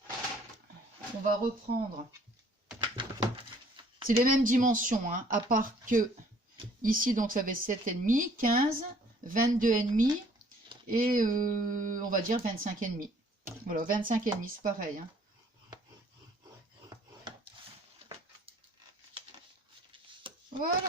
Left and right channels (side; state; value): both; normal; correlation 0.58